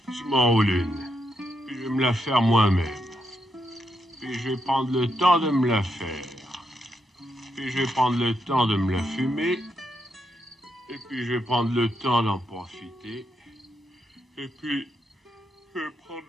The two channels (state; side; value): normal; both; correlation 0.81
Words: Je m'enroule une. Puis je vais me la faire moi-même. Puis je vais prendre le temps de me la faire. Puis je vais prendre le temps de me la fumer. Et puis je vais prendre le temps d'en profiter. Et puis je vais prendre